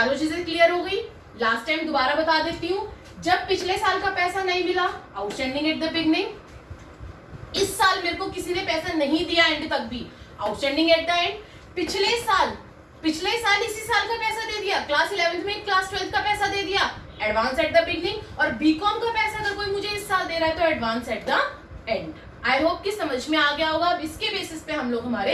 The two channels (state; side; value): identical; both; correlation 1.00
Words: चीजें क्लियर हो गई। लास्ट टाइम दोबारा बता देती हूँ, जब पिछले साल का पैसा नहीं मिला आउटस्टैंडिंग एट द बिगनिंग, इस साल मेरे को किसी ने पैसा नहीं दिया एंड तक भी आउटस्टैंडिंग एट द एंड। पिछले साल इसी साल का पैसा दे दिया, क्लास 11th में क्लास 12th का पैसा दे दिया, एडवांस एट द बिगनिंग। और बीकॉम का पैसा अगर कोई मुझे इस साल दे रहा है तो advance at the end. I hope कि समझ में आ गया होगा। अब इसके बेसिस पे हम लोग हमारे